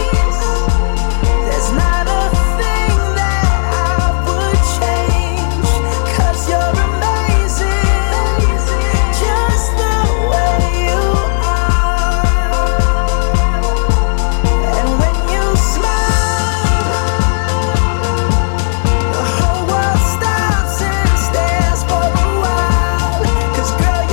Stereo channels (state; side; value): silent; right; 70 dB below the other